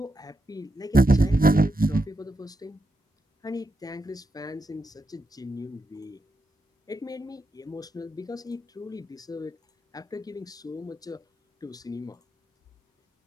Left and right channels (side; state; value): both; normal; correlation 0.85